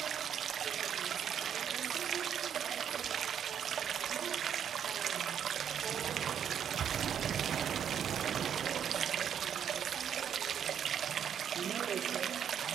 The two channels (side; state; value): left; quieter; 8.7 dB